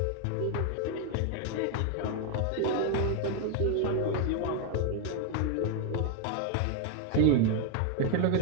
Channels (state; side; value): different; both; correlation 0.01